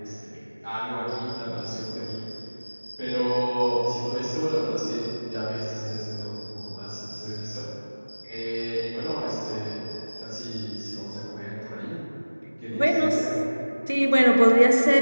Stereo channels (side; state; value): both; inverted; correlation -1.00